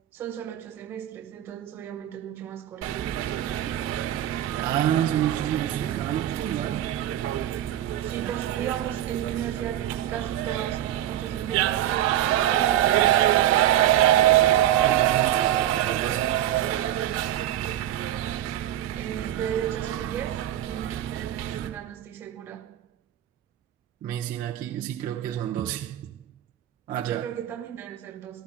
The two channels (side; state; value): left; quieter; 12.3 dB